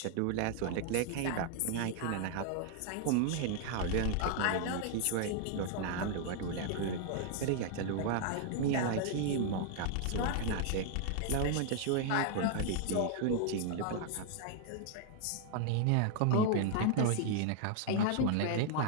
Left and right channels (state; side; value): different; both; correlation 0.00